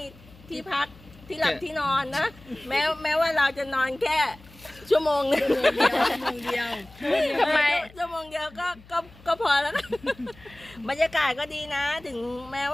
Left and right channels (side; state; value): left; noise; hum, 23 dB below the sound